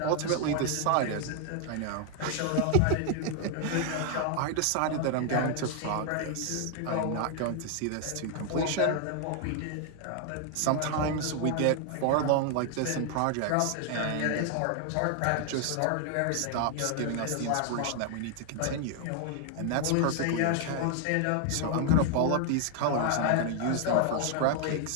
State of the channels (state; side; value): different; both; correlation 0.00